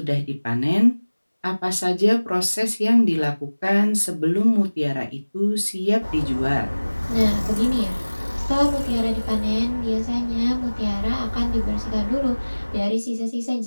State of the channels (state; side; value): inverted; both; correlation -1.00